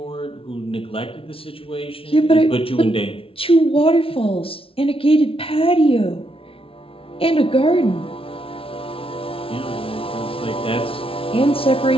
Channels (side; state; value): right; late; 0.26 ms